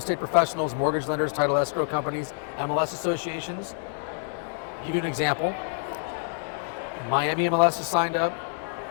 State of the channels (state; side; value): silent; right; digital silence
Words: professionals, mortgage lenders, title escrow companies, MLS associations, give you an example. Miami MLS is signed up,